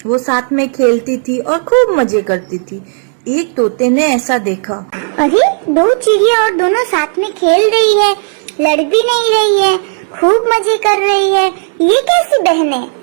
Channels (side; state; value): left; silent; digital silence